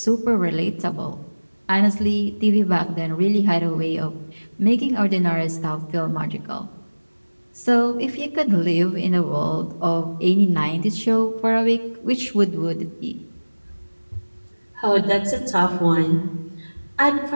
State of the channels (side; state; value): both; inverted; correlation -1.00